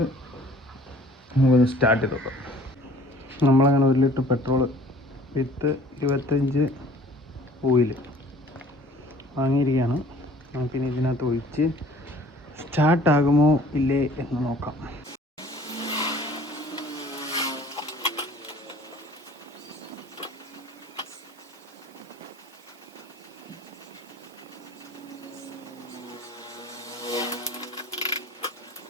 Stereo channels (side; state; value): both; normal; correlation 0.52